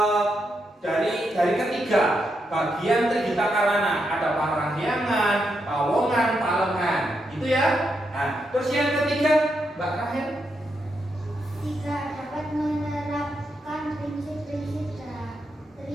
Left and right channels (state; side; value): normal; both; correlation 0.82